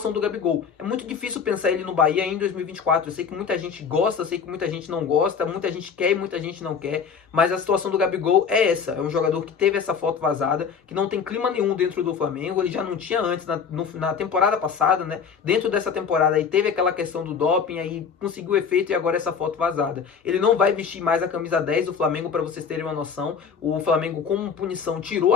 do Gabigol. É muito difícil pensar ele no Bahia em 2024. Eu sei que muita gente gosta, eu sei que muita gente não gosta, muita gente quer e muita gente não quer, mas a situação do Gabigol é essa. É um jogador que teve essa foto vazada, que não tem clima nenhum dentro do Flamengo. Ele já não tinha antes, na temporada passada, né? Dentro dessa temporada aí teve aquela questão do doping, aí conseguiu efeito e agora essa foto vazada. Ele não vai vestir mais a camisa 10 do Flamengo, para vocês terem uma noção. O Flamengo, como punição, tirou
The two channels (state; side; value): quieter; right; 6.4 dB